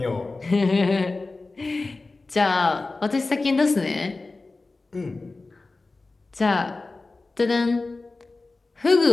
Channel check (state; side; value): quieter; right; 3.5 dB